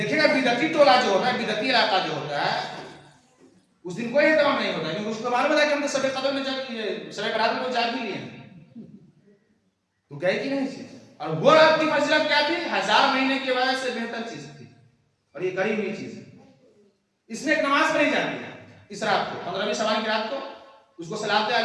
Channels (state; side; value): identical; both; correlation 1.00